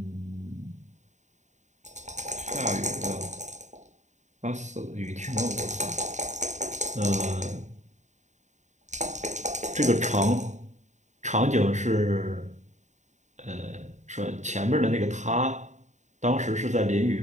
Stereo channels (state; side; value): late; left; 0.34 ms